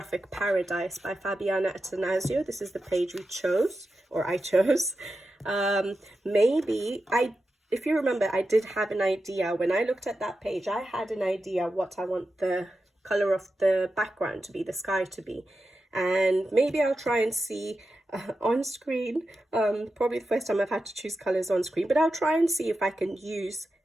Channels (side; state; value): both; normal; correlation 0.91